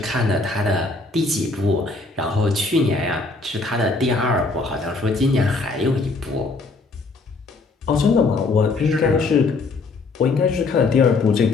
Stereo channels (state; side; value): quieter; right; 3.7 dB